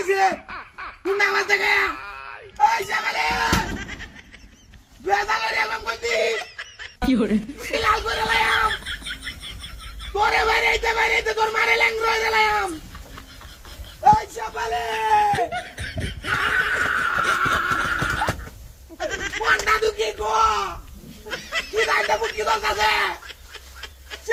গুন্ডা আমার থেকে এই সকালে বেজালে রে আমি কইতি কি করে লাল করে লাইম তোরে বাইরে তোর মারে ল্যাং রয়ে গেলাম এই সকালে কোনটা দুকি গো কি দাইতে মুটকি দলতাছে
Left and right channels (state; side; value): identical; both; correlation 1.00